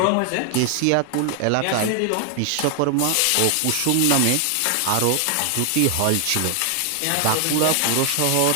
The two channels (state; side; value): different; both; correlation 0.00